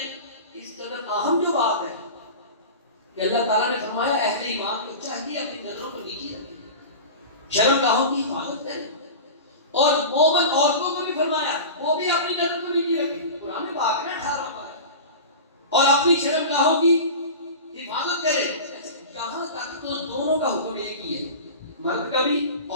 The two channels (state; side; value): inverted; both; correlation -0.31